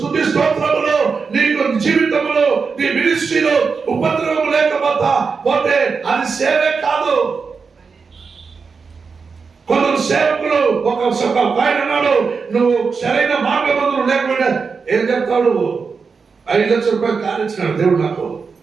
స్తోత్రములో, నీకు జీవితంలో, నీ మినిస్ట్రీలో ఉపద్రవం లేకపోతే అది సేవే కాదు. కొందరు సేవకులు ఒక ఆయన అన్నాడు, నువ్వు సరైన మార్గబంధులు లేకపోయినా ఏం చెప్తాడు? 5 లక్షల రూపాయలు కానిచ్చినాడు దేవుడు నాకు.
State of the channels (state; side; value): quieter; left; 5.2 dB